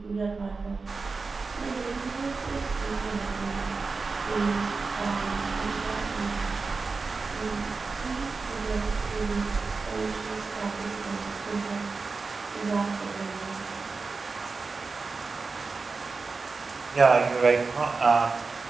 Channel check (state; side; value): quieter; left; 4.3 dB